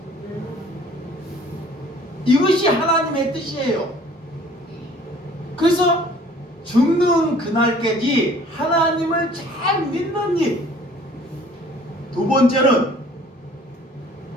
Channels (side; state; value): both; normal; correlation 0.53